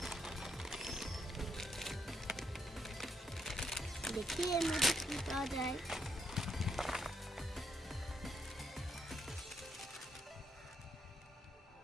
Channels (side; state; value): both; normal; correlation 0.76